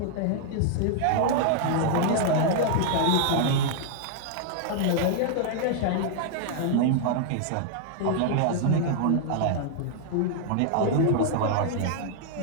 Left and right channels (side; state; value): both; different; correlation -0.01